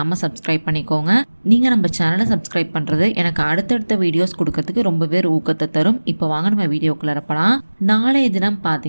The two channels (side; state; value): both; inverted; correlation -1.00